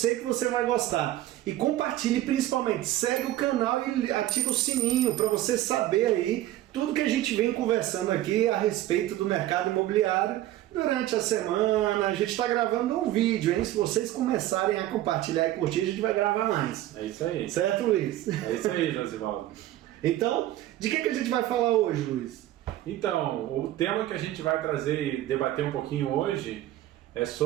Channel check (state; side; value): quieter; left; 14.3 dB